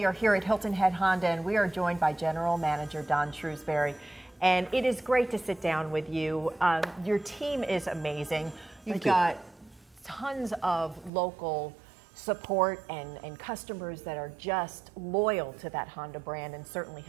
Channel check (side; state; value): left; drops out; at 11.1 s